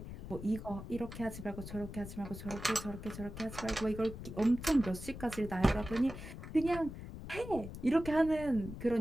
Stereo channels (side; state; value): left; noise; rumble, 10 dB below the sound